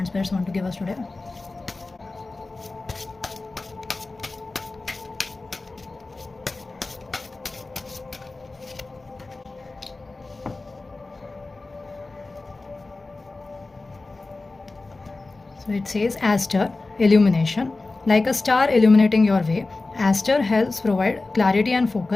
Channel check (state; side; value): quieter; right; 3.4 dB